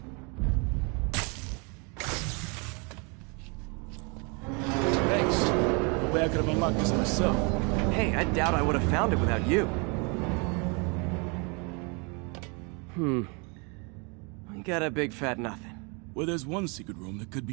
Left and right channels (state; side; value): quieter; left; 32.4 dB